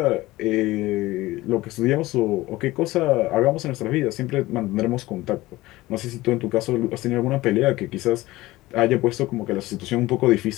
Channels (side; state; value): right; quieter; 18.5 dB